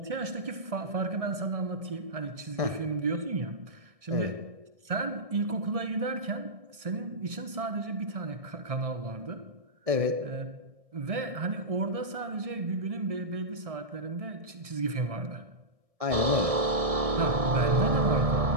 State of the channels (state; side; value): late; left; 1.6 ms